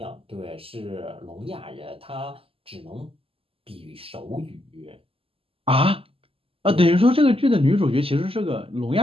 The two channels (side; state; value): left; late; 0.27 ms